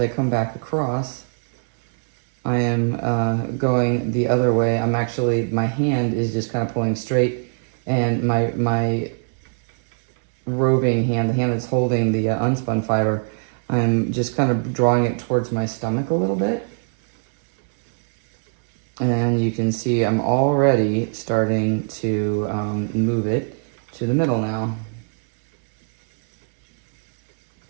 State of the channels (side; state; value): left; silent; 65 dB below the other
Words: come back across, I am going the other way. I'm actually, my hand is just kind of pulling straight, and my roving hand, the hand that's holding the unspun fiber, I'm just kind of drawing it towards my stomach a little bit. And you can see I'm already starting to move it to the middle now.